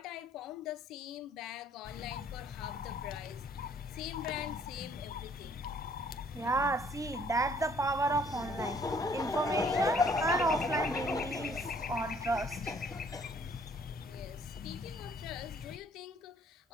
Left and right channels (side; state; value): both; normal; correlation 0.61